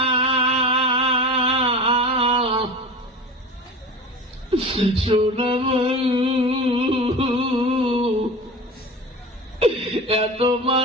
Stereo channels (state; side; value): normal; both; correlation 0.32